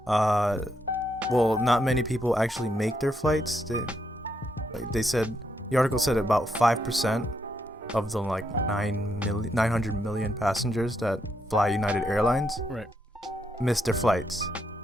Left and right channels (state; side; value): normal; both; correlation 0.78